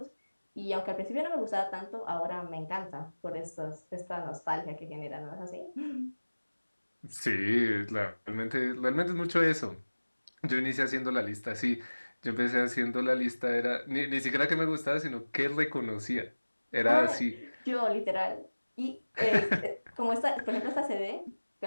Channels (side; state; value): both; inverted; correlation -1.00